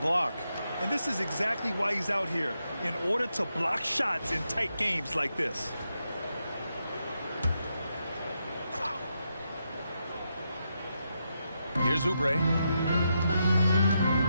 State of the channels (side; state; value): both; inverted; correlation -0.83